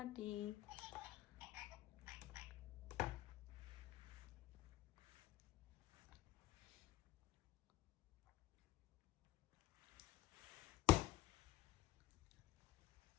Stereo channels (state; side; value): quieter; right; 16.1 dB